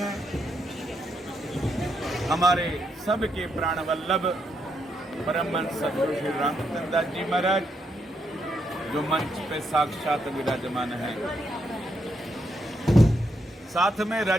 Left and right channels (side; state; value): both; normal; correlation 0.79